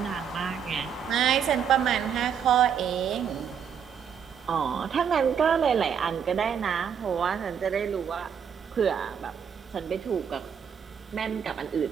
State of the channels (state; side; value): quieter; left; 7.6 dB